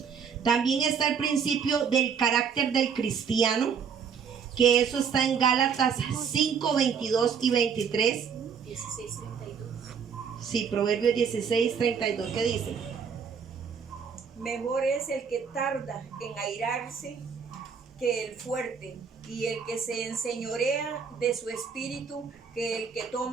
También está el principio del carácter del cristiano, que eso está en Gálatas 5:22 y 23. 16:32. Sí, Proverbios 16:32, ¿qué dice? Mejor es el que tarda en airarse que el fuerte, y el que se enseñorea de su espíritu que el que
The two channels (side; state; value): left; quieter; 6.7 dB